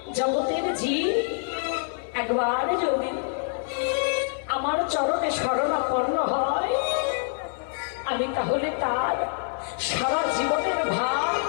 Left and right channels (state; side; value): silent; right; 61 dB below the other